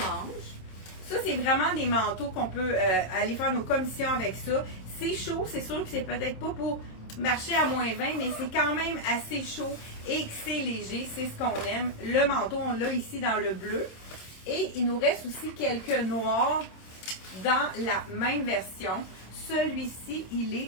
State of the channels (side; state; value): right; late; 26 ms